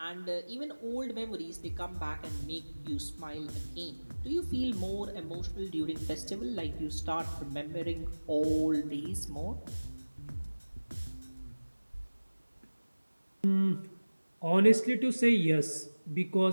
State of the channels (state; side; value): inverted; both; correlation -1.00